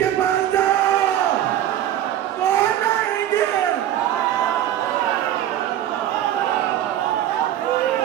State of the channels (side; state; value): left; quieter; 11.8 dB